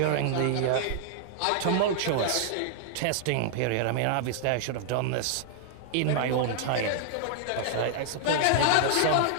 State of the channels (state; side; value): different; both; correlation -0.01